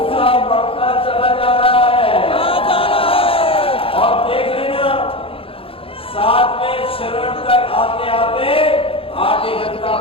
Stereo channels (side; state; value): right; late; 0.27 ms